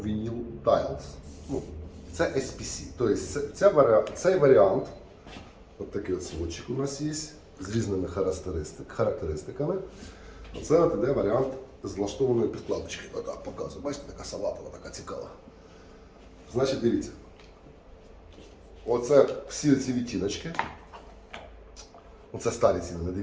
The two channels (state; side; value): identical; both; correlation 1.00